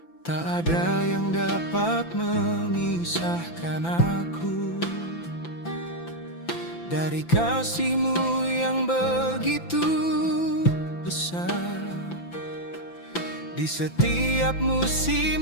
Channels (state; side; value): late; right; 5.9 ms